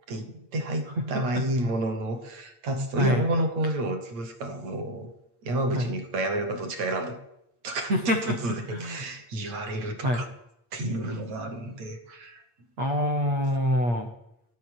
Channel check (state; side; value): late; left; 8.5 ms